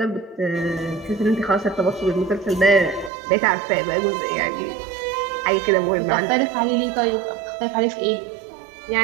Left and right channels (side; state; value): left; drops out; at 3.1 s